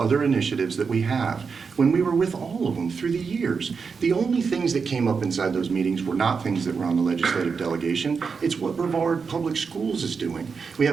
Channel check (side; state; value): left; quieter; 5.4 dB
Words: initiatives that we have when we were with all of them through the years. The only things that came up inside those meetings were not things that were on the legislative delegation. It's what Brevard Public Schools is doing. We